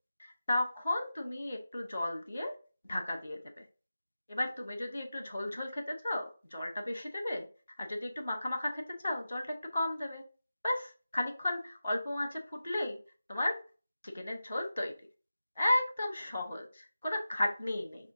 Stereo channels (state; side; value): inverted; both; correlation -0.93